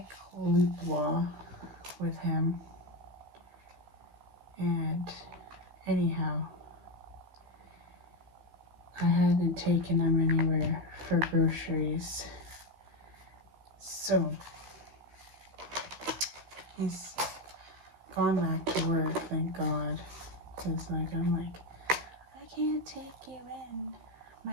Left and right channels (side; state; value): left; late; 15 ms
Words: with him. And anyhow, I hadn't taken him anywhere for groceries. So he's gone back to work, thank God. Because I'm like, I can't take you in. My